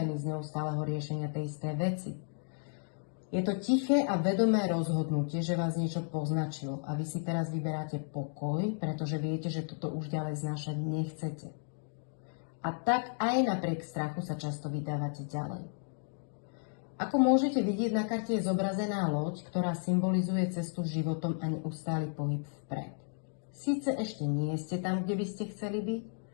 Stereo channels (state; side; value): silent; right; 56 dB below the other